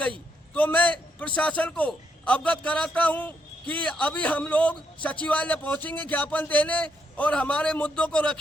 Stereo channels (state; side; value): normal; both; correlation 0.77